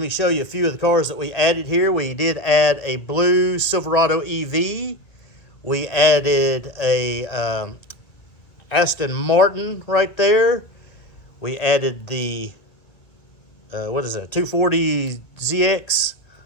me show you a few of the cars that we added here. We did add a blue Silverado EV. We added a Aston Martin right there. We added the, 240 ZX.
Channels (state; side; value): late; right; 1.8 ms